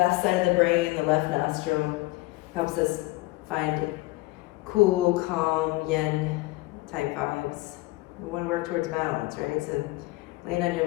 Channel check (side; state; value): right; quieter; 20.9 dB